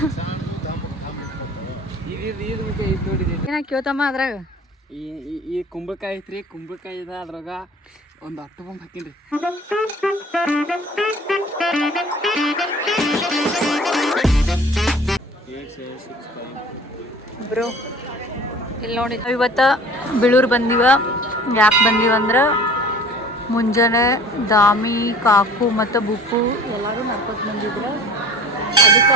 ಏನ ಕೇಳ್ತಮ್ಮ ಅದ್ರಾಗ ಈ ಕುಂಬಳಕಾಯಿ ಐತ್ರಿ ಕುಂಬಳಕಾಯಿ ಇದೆ ಅದ್ರಾಗ ಒಂದು 10 ಬೊಂಬ್ ಹಾಕಿನ್ರಿ ಬ್ರೋ ಇಲ್ಲಿ ನೋಡಿ ಇವತ್ತು ಬೀಳೂರು ಬಂದೀವ ಯಾಕೆ ಬಂದೀವ ಅಂದ್ರೆ ಮುಂಜಾನೆ ದಾಮಿ ಕಾಕು ಮತ್ತು ಬುಕ್ಕು ಎಲ್ಲರೂ ನಡ್ಕೊತ ಬಂದಿದ್ರು ಅದಕ್ಕೆ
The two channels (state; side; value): normal; both; correlation 0.46